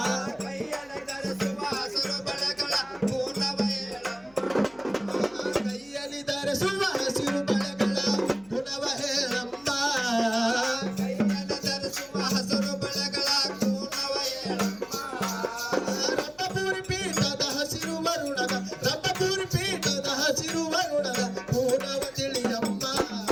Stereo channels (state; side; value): noise; left; hum, 29 dB below the sound